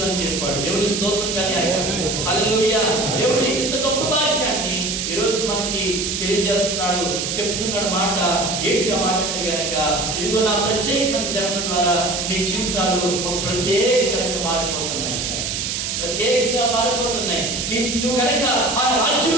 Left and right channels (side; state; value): right; noise; hiss, 2 dB below the sound